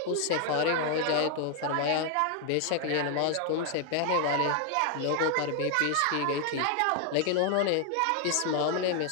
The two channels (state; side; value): different; both; correlation 0.00